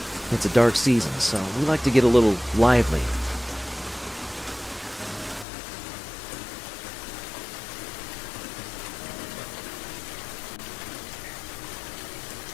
It's a dark season, so we like to get a little lively.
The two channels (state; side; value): drops out; right; at 5.5 s